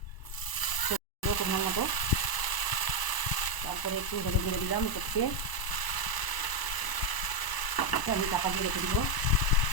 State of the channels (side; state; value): right; late; 1.0 ms